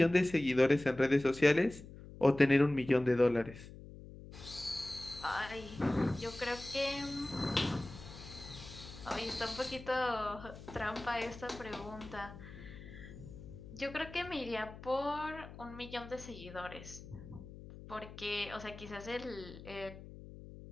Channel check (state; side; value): noise; left; hum, 15 dB below the sound